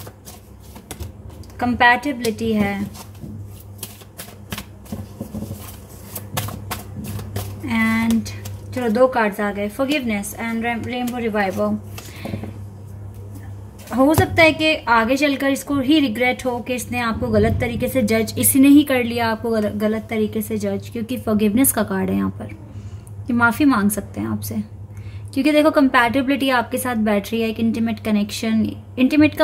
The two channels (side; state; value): both; identical; correlation 1.00